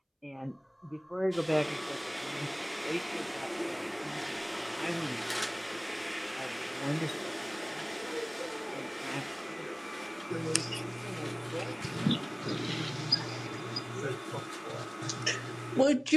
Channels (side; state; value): both; identical; correlation 1.00